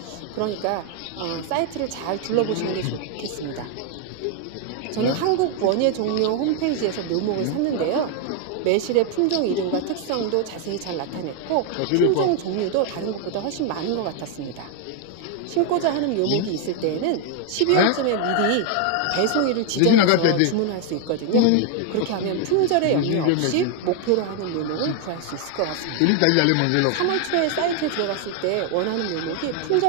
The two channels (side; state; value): both; different; correlation 0.00